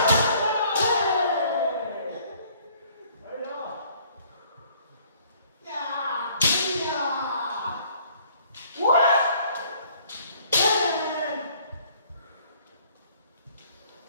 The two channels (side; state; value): both; inverted; correlation -0.58